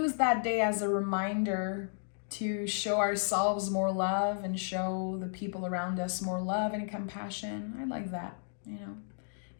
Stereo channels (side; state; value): right; silent; digital silence